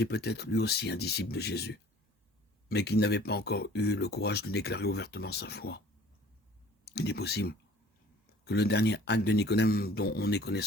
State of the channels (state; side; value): normal; both; correlation 0.50